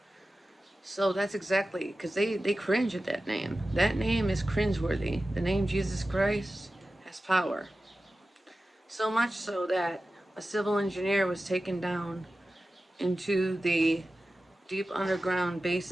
So that's exactly, because they cringe at that name. That name is cringeworthy. The name Jesus Christ has power. So much so that a civil engineer was taken down into the deep underground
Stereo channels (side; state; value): both; normal; correlation 0.94